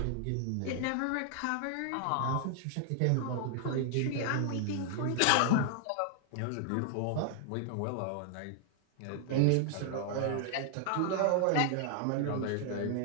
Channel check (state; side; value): different; both; correlation 0.00